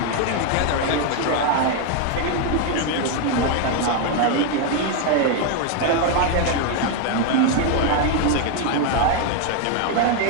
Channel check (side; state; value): both; different; correlation 0.01